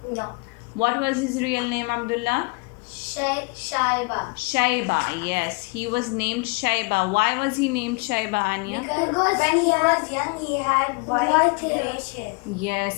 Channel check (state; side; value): quieter; right; 29.1 dB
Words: No. What was his real name, Abdullah? Shaiba, yes. He was named Shaiba. Why was he named Shaiba, Anya? Because when he was young, he had white grayish hair.